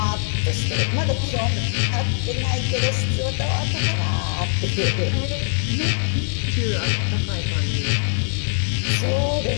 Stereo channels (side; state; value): right; silent; digital silence